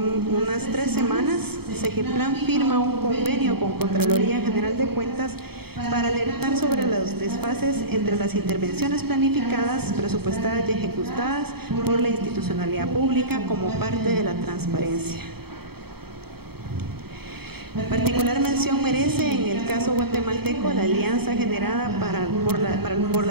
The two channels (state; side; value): late; left; 0.96 ms